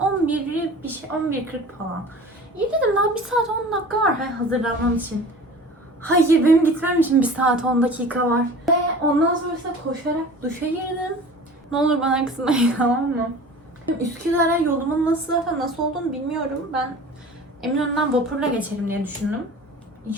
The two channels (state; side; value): normal; both; correlation 0.40